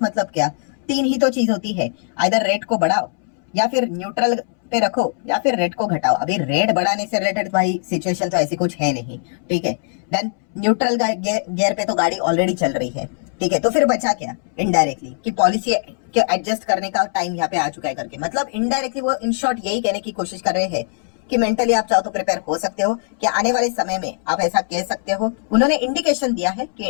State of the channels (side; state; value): right; silent; 65 dB below the other